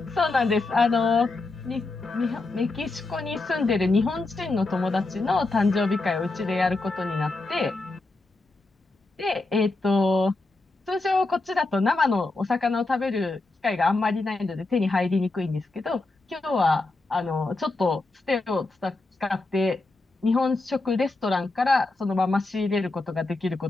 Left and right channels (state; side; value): quieter; right; 3.2 dB